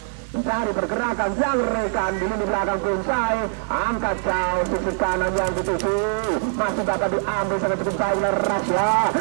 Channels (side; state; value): left; silent; 59 dB below the other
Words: mencari pergerakan yang rekan di lini belakang Prinsai, angkat jauh sisi kanan yang dituju, masih dapat diambil sangat cukup baik oleh Rasya,